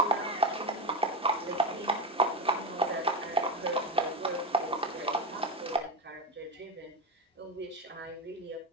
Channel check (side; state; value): both; normal; correlation 0.15